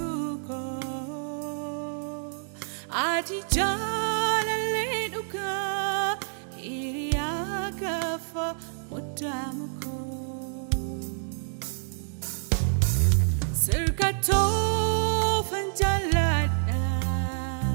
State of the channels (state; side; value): silent; left; 59 dB below the other